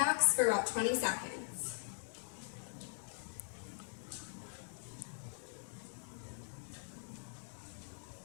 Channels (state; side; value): silent; right; digital silence